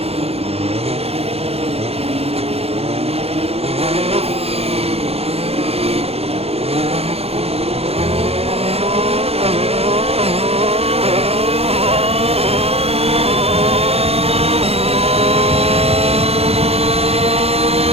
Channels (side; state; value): left; late; 0.29 ms